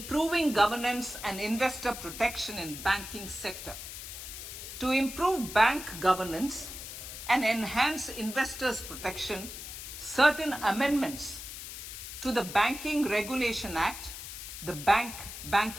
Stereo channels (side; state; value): left; noise; hiss, 10 dB below the sound